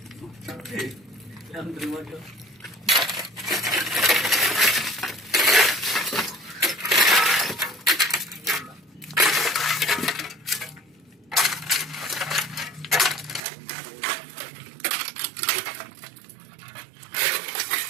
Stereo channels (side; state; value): left; drops out; at 13.4 s